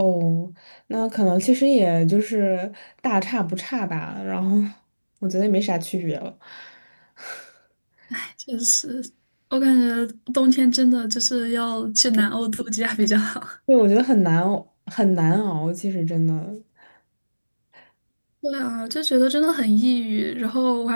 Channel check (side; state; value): both; inverted; correlation -1.00